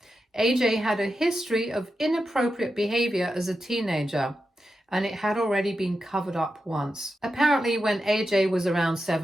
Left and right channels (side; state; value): both; normal; correlation 0.89